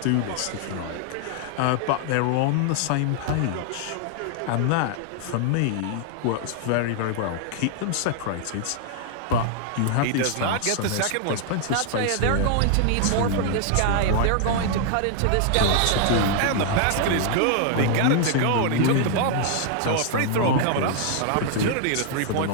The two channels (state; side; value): different; both; correlation 0.00